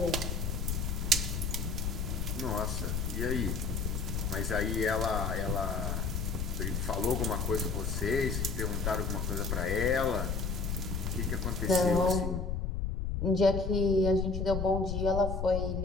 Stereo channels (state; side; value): noise; left; rumble, 1 dB below the sound